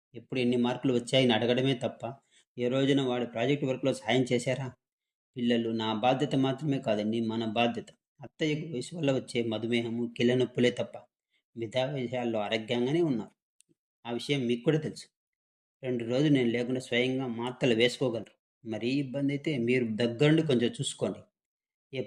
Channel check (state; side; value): identical; both; correlation 1.00